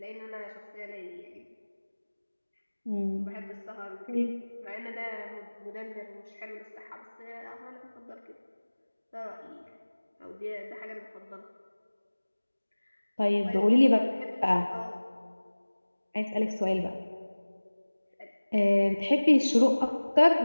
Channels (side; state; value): both; inverted; correlation -1.00